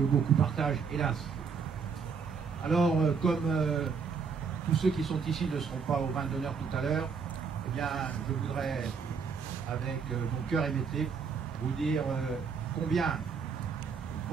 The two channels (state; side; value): quieter; left; 5.8 dB